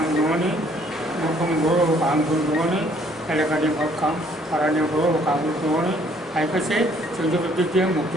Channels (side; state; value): both; normal; correlation 0.62